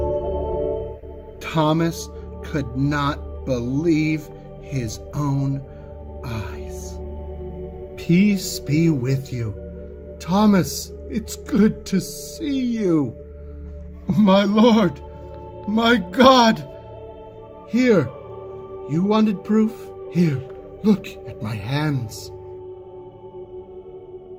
Thomas could not believe his own eyes. Peace be with you. Thomas, it's good to see you. My Lord, my God. Here, you wanted proof? Here, look at my hands.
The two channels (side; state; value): both; identical; correlation 1.00